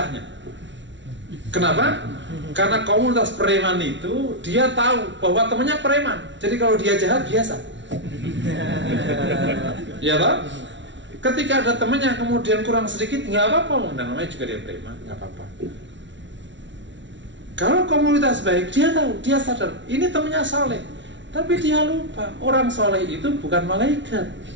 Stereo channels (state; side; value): late; left; 0.54 ms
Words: Kenapa? Karena komunitas preman itu dia tahu bahwa temannya preman. Jadi kalau dia jahat biasa. Ya toh? Ketika ada temannya kemudian kurang sedikit, nggak apa-apa, namanya juga dia preman, nggak apa-apa. Kalau komunitas baik, dia tahu, dia sadar ini temannya saleh, tapi dia lupa orang saleh itu bukan malaikat.